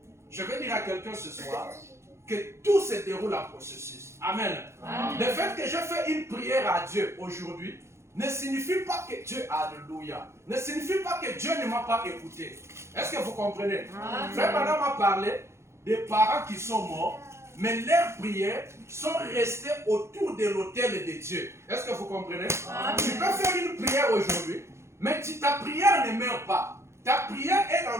Je vais dire à quelqu'un ce soir que tout se déroule en processus. Amen. Amen. Le fait que je fais une prière à Dieu aujourd'hui ne signifie pas que Dieu, alléluia, ne signifie pas que Dieu ne m'a pas écouté. Est-ce que vous comprenez? Amen. Frère Madame m'a parlé des parents qui sont morts, mais leurs prières sont restées autour de l'autel de Dieu. Est-ce que vous comprenez? Amen. Tu peux faire une prière aujourd'hui, mais ta prière ne meurt pas. Ta prière est dans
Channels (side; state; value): left; late; 0.13 ms